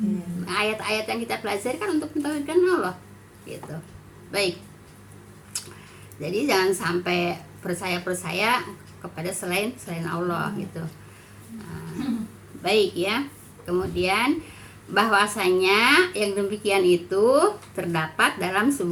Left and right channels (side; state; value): both; identical; correlation 1.00